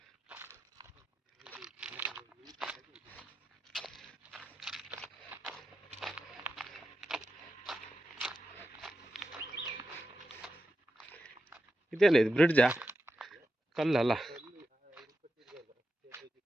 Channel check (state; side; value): normal; both; correlation 0.89